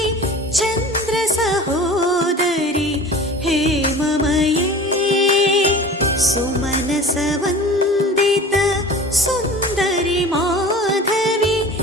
చంద్ర సహోదరి హేమమయే. సుమనస వందిత సుందరి మాధవి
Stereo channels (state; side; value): normal; both; correlation 0.40